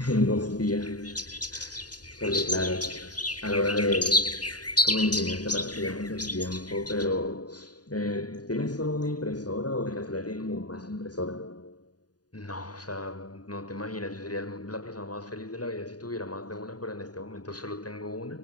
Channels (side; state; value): right; late; 0.68 ms